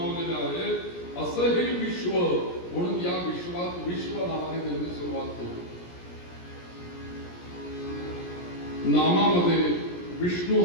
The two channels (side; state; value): right; late; 17 ms